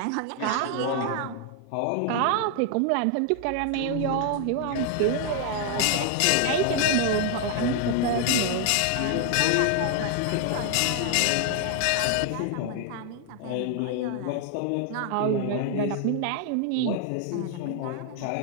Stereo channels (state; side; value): different; both; correlation 0.00